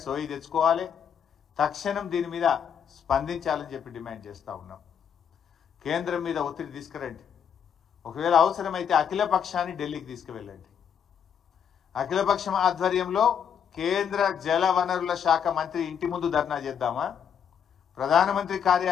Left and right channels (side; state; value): right; quieter; 8.0 dB